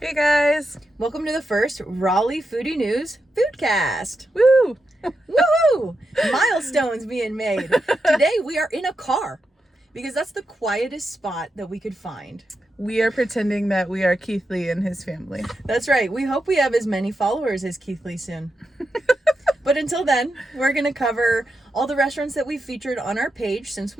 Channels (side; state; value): both; normal; correlation 0.87